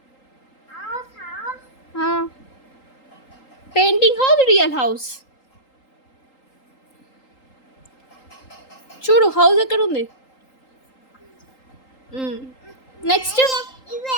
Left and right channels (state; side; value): late; right; 3.8 ms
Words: Painting house, real house. చూడు హౌస్ ఎక్కడ ఉంది. నెక్స్ట్